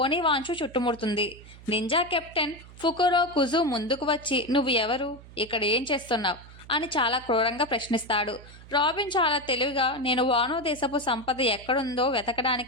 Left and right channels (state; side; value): noise; right; hum, 19 dB below the sound